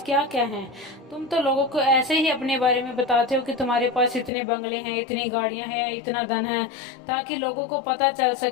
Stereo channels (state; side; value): drops out; right; at 4.3 s